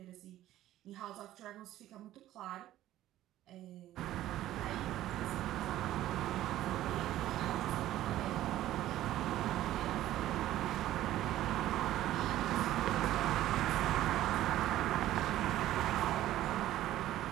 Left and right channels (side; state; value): left; quieter; 13.9 dB